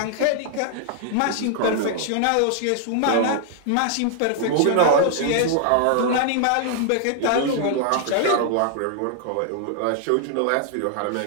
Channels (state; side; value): different; both; correlation 0.00